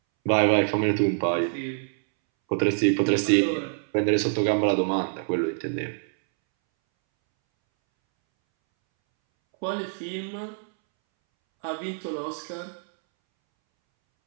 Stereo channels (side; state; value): left; silent; 62 dB below the other